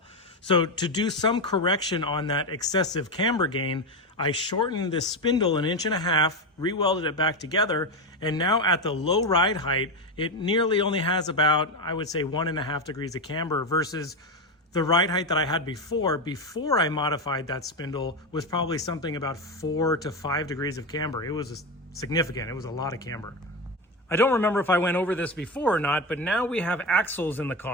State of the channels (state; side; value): normal; both; correlation 0.14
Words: So to do some correction on that excessive camber gain, I shortened this spindle 1.5 inches, re-welded it back together, and now at the low ride height, it nearly only has about, I would say, 1.5 degrees of camber versus the ride height that I had before I modified that spindle was probably something about 4 to 5 degrees of camber. It was significant. It was a lot of camber. I don't remember if I went over this before or not, but now we have axles in the